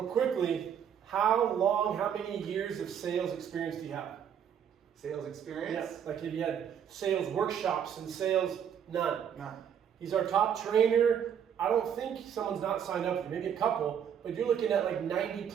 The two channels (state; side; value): quieter; left; 8.5 dB